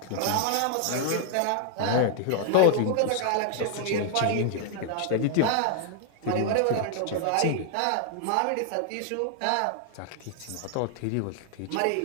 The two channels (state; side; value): different; both; correlation 0.00